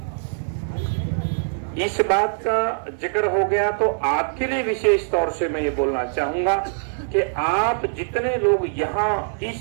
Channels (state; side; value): silent; left; digital silence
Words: इस बात का जिक्र हो गया तो आपके लिए विशेष तौर से मैं ये बोलना चाहूंगा कि आप जितने लोग यहाँ